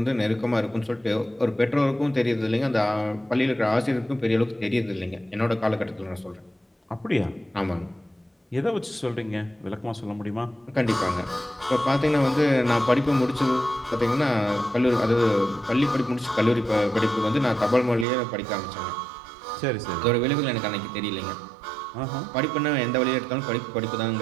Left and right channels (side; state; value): left; drops out; at 18.1 s